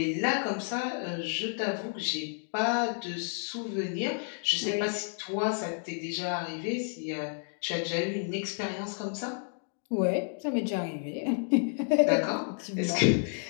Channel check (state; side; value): silent; right; 57 dB below the other